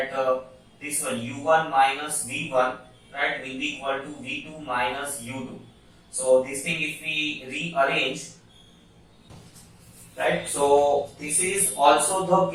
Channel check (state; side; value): identical; both; correlation 1.00